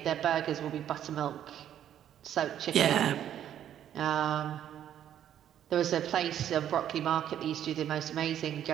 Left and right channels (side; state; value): left; quieter; 10.4 dB